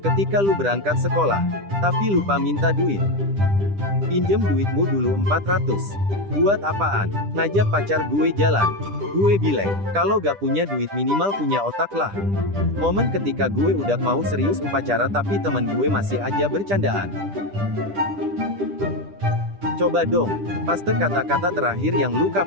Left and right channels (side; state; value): left; late; 10 ms